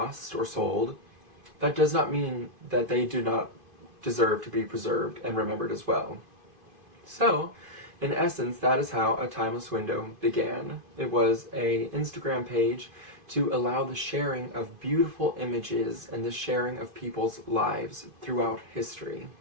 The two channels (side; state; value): left; late; 2.5 ms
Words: or sold, that does not mean that they do not deserve to be preserved and remembered as well. So, in essence, that is how A Timeless Window began. It was an Instagram page to allow the sharing of beautiful images and the sharing of people's lives throughout history.